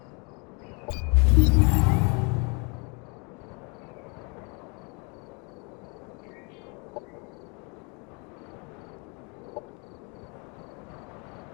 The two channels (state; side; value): quieter; right; 32.8 dB